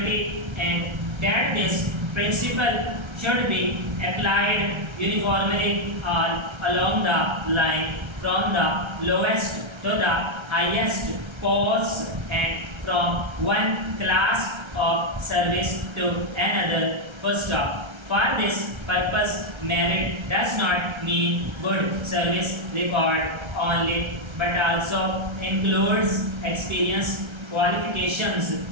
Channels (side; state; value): left; late; 1.3 ms